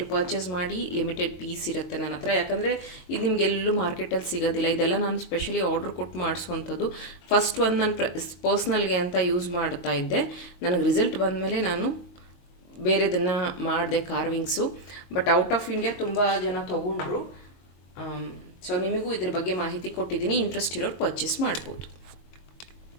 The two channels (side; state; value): right; late; 22 ms